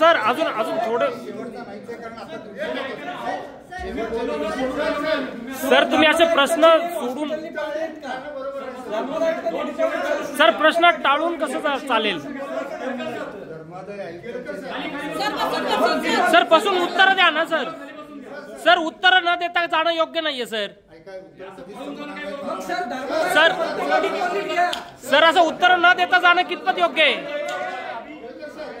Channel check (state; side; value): identical; both; correlation 1.00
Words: अजून अजून थोडं सर तुम्ही असे प्रश्न सोडून सर प्रश्न टाळून कसं चालेल सर पासून उत्तर द्या ना सर सर उत्तर न देता जाणं योग्य नाहीये सर सर सर असं उत्तर न देता जाणं कितपत योग्य आहे